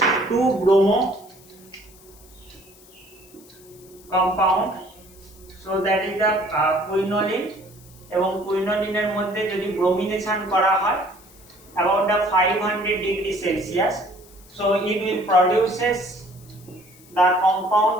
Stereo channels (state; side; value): noise; left; hiss, 24 dB below the sound